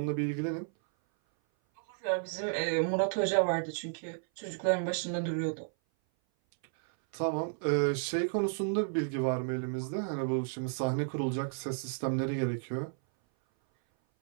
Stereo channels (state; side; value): silent; left; 56 dB below the other